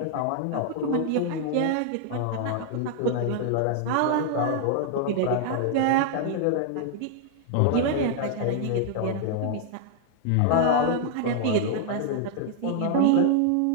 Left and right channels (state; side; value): different; both; correlation -0.01